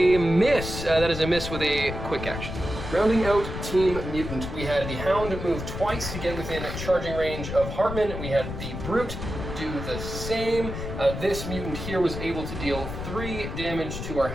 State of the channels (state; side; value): noise; left; rumble, 7 dB below the sound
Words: miss. That is a miss with a quick action. Rounding out Team Mutant, we had the Hound move twice to get within charging range of Hartman. We had the Brute do the same. This mutant here was able to deal 3 damage to our